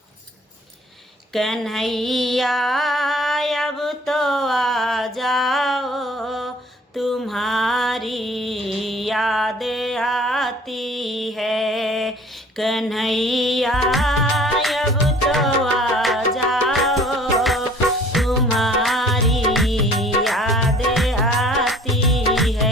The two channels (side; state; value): both; normal; correlation 0.52